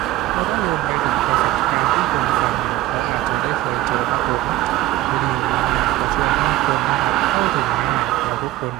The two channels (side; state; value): left; quieter; 16.1 dB